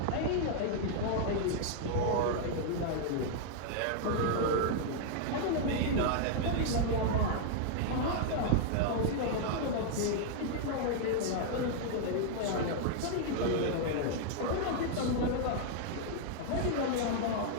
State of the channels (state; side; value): different; both; correlation -0.01